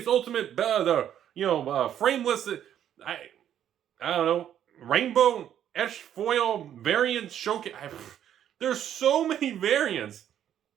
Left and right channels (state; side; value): quieter; left; 10.3 dB